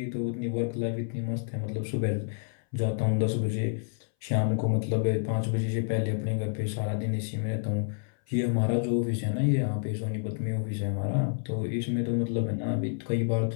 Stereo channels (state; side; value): silent; right; 59 dB below the other